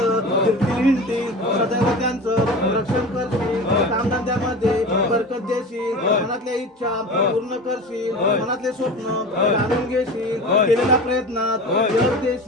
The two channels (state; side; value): normal; both; correlation 0.33